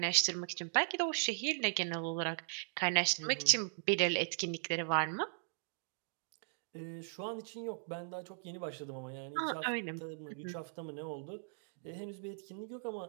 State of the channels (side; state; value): left; silent; digital silence